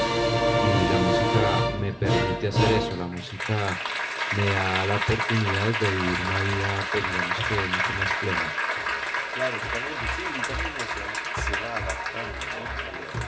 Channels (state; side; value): identical; both; correlation 1.00